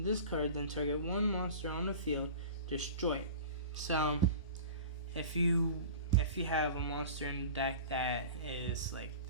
card, then target one monster on the field, destroy it. So if you have a monster in the deck that is like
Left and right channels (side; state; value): both; inverted; correlation -0.37